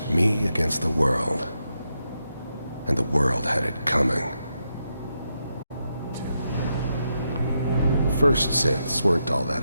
me against the world. and the world had it coming. First synths weren't all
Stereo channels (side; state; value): both; inverted; correlation -0.83